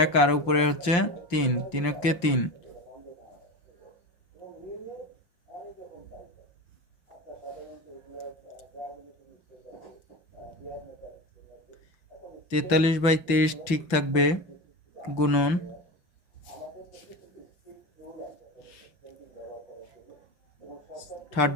1, আর উপরে 3, 3-একে 3। 43/23 ঠিক থাকবে, গুণন থার্ড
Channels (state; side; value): late; right; 5.8 ms